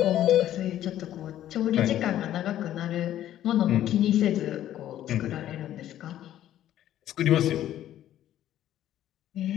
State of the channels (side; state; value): right; quieter; 12.2 dB